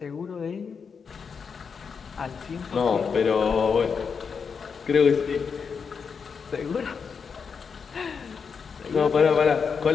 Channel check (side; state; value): right; quieter; 5.9 dB